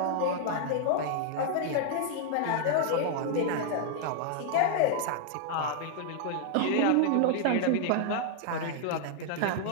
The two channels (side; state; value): both; different; correlation 0.00